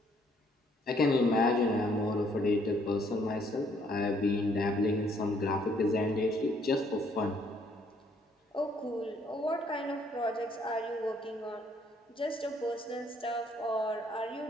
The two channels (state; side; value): normal; both; correlation 0.66